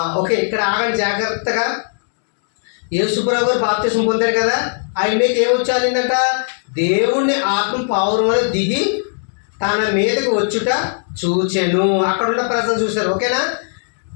ఓకే, ఇక్కడ ఆగండి జాగ్రత్తగా. యేసుప్రభు గారు బాప్తిసం పొందారు కదా, ఆయన మీకు ఏమొచ్చాలిందంట, దేవుని ఆత్మ పావురం వలె దిగి తన మీదకి వచ్చుట చూచెను. అక్కడ ఉన్న ప్రజలు చూశారు. ఓకేనా,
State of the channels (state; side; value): silent; right; digital silence